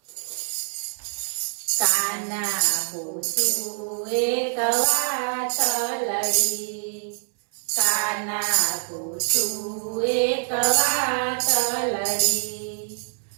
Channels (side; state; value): left; silent; 62 dB below the other